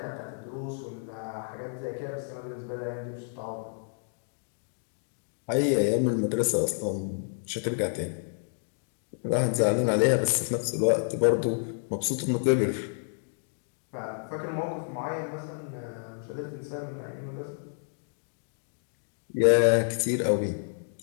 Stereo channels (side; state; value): right; silent; digital silence